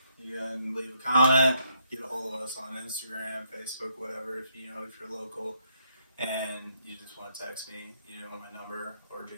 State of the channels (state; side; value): inverted; both; correlation -0.74